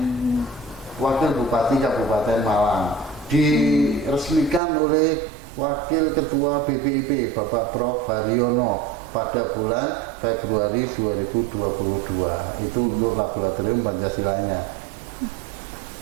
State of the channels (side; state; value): left; drops out; at 4.6 s